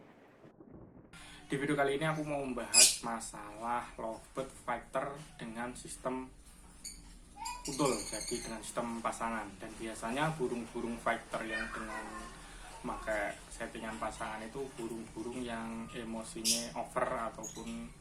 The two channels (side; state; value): both; identical; correlation 1.00